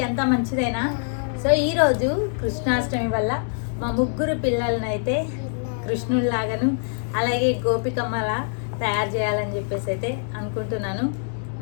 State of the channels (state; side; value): silent; right; digital silence